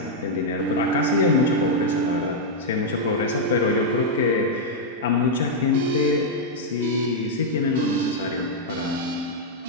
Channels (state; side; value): normal; both; correlation -0.04